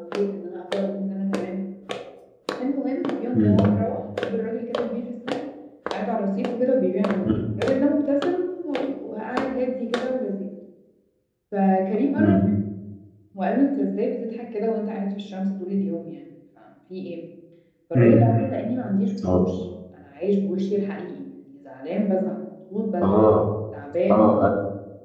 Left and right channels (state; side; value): identical; both; correlation 1.00